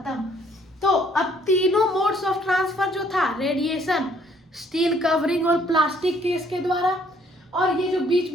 तो अब तीनों मोड्स ऑफ ट्रांसफर जो था, रेडिएशन, स्टील कवरिंग और प्लास्टिक केस के द्वारा, और ये जो बीच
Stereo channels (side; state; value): both; normal; correlation 0.63